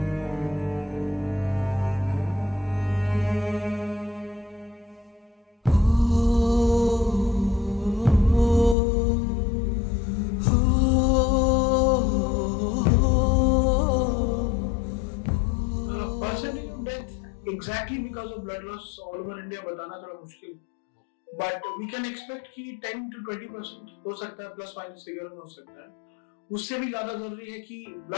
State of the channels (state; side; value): drops out; right; at 8.8 s